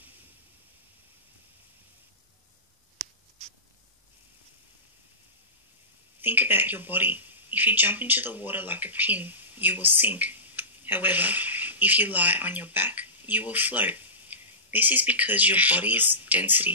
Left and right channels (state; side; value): normal; both; correlation -0.20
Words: Think about your body. If you jump into the water like a pin, you will sink. However, if you lie on your back, you will float. This is because your body's